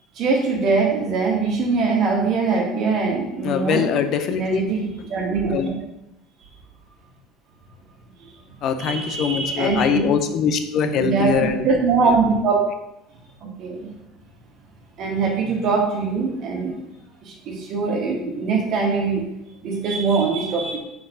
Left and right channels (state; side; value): normal; both; correlation 0.36